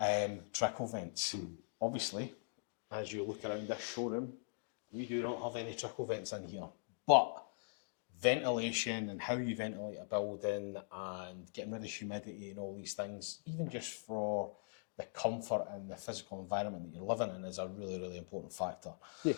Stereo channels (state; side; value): silent; right; digital silence